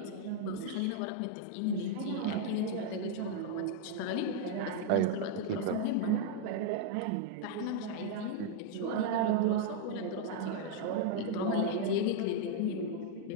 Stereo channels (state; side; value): different; both; correlation 0.00